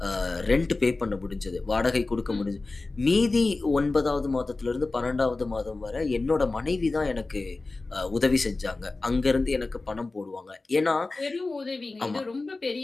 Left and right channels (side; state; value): right; quieter; 3.4 dB